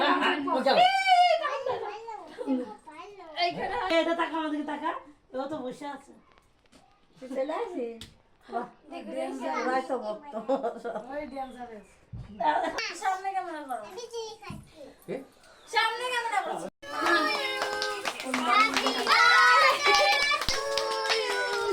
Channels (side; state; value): both; identical; correlation 1.00